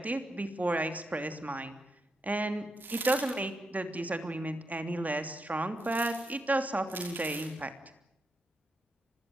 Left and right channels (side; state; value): both; normal; correlation 0.83